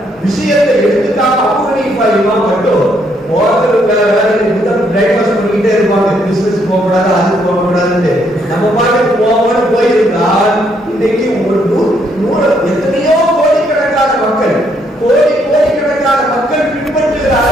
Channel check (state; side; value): normal; both; correlation 0.72